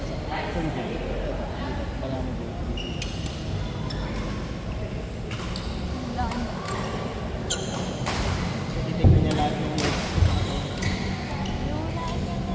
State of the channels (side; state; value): both; identical; correlation 1.00